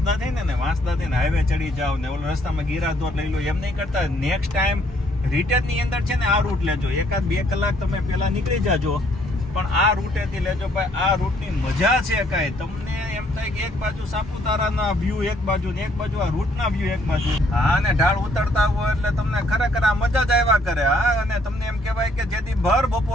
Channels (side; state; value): both; normal; correlation 0.66